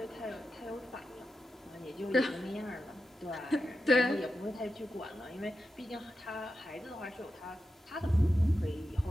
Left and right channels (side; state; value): both; normal; correlation 0.90